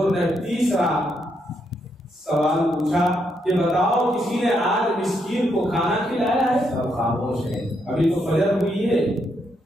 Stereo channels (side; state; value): both; normal; correlation 0.78